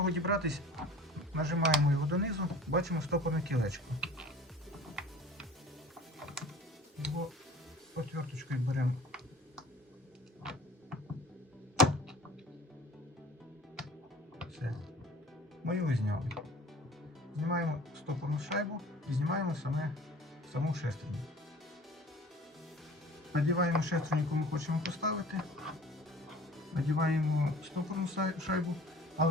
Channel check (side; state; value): both; normal; correlation 0.46